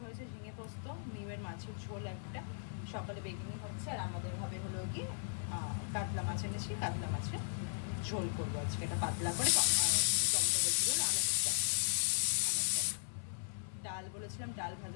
হয়েছে, ঝিঙে পোস্ত, মিওয়ের মাছের ঝোল একটা, সকালে বেগুনি হচ্ছে, আর আমাদের হবে হলো কি কাতলা মাছ এনেছি, কাতলা মাছের ঝোল করবো আজকে। এটা পাতলা করে টমেটো বলছিল ডাল বলেছিলাম, ডাল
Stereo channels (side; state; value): right; silent; 53 dB below the other